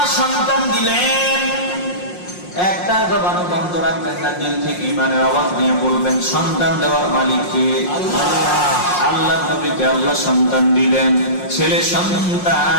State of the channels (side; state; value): right; late; 5.6 ms